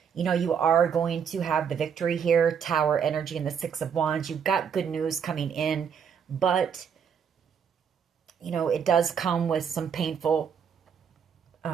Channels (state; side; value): quieter; left; 7.3 dB